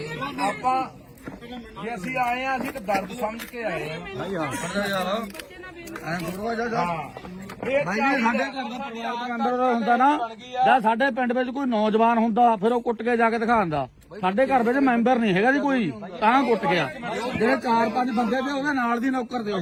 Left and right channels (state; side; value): identical; both; correlation 1.00